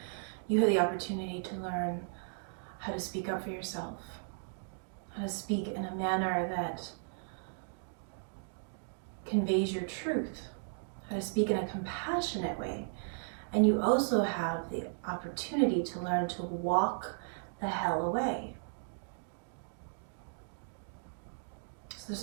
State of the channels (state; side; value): silent; left; digital silence